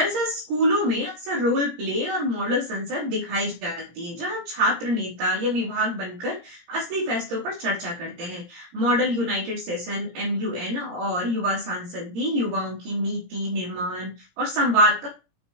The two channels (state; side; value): late; left; 17 ms